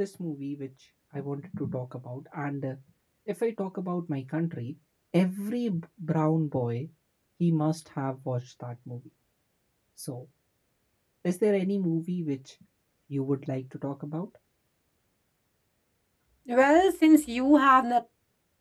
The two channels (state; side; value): identical; both; correlation 1.00